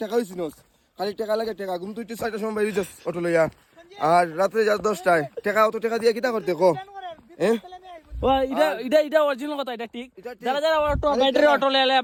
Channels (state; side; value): identical; both; correlation 1.00